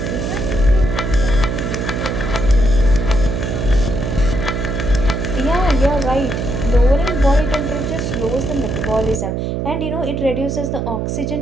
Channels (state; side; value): noise; right; hum, 2 dB below the sound